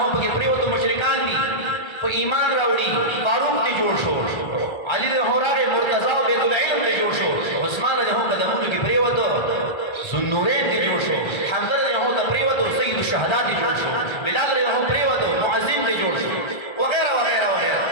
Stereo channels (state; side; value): late; right; 1.4 ms